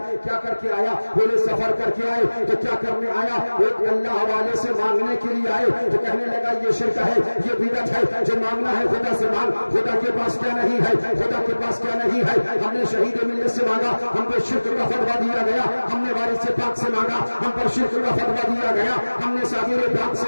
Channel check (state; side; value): inverted; both; correlation -1.00